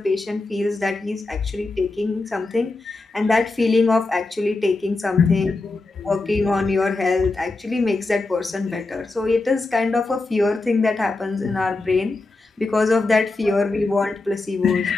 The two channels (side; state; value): right; quieter; 3.3 dB